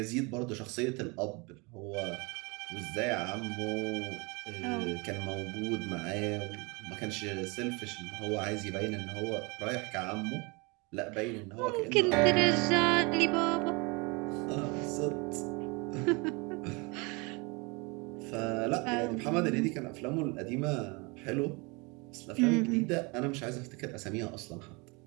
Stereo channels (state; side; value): quieter; left; 28.4 dB